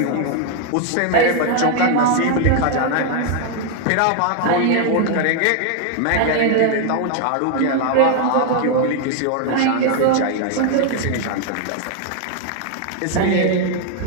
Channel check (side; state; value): both; different; correlation 0.00